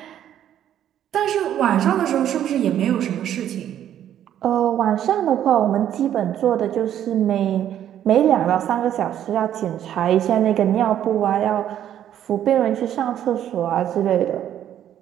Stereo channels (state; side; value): quieter; left; 10.8 dB